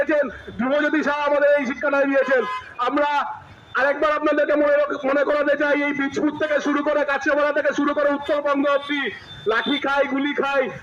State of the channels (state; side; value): identical; both; correlation 1.00